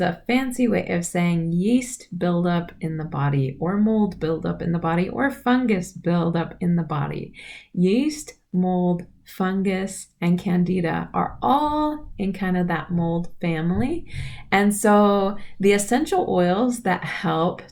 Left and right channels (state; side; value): identical; both; correlation 1.00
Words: a fancy way of saying yeast buildup in the body, or mold buildup in the body, or fungus buildup in the body. Yeast, mold, fungus, and Candida are all in kind of that mold family. And so the essential oils that help